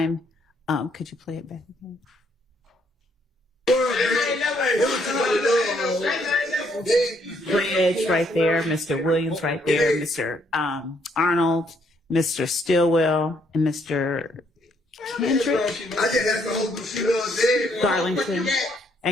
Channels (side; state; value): both; normal; correlation 0.70